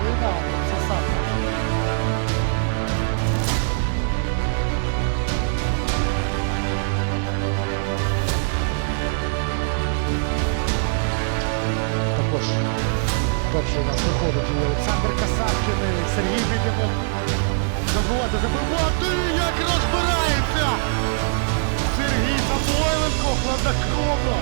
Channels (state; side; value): silent; left; 64 dB below the other